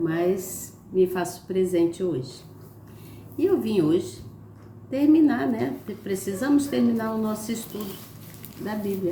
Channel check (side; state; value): both; identical; correlation 1.00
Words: me faço presente hoje. E eu vim hoje terminar, né? Precisamos terminar o nosso estudo da